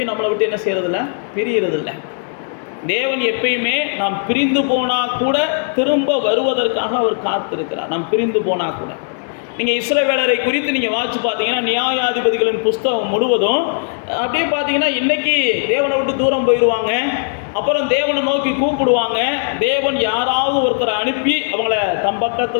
நம்மளை விட்டு என்ன செய்யறதில்ல, பிரியறதில்லை. தேவன் எப்பயுமே நாம் பிரிந்து போனால் கூட திரும்ப வருவதற்காக அவர் காத்திருக்கிறார். நாம் பிரிந்து போனால் கூட நீங்கள் இஸ்ரவேலரை குறித்து நீங்கள் வாசித்து பார்த்தீங்கன்னா, நியாயாதிபதிகளின் புஸ்தகம் முழுவதும் அப்படியே பார்த்தீங்கன்னா, இன்றைக்கி தேவனை விட்டு தூரம் போயிடுவாங்க, அப்புறம் தேவனை நோக்கி கூப்பிடுவாங்க, தேவன் யாராவது ஒருத்தரை அனுப்பி அவங்கள தம்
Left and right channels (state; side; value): silent; right; digital silence